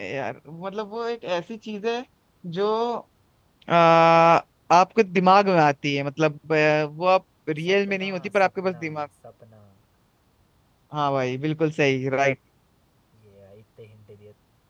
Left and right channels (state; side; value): identical; both; correlation 1.00